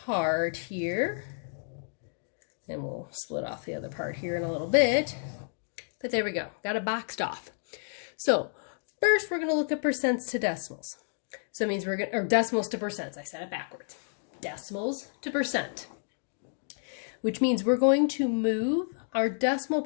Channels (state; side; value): silent; right; digital silence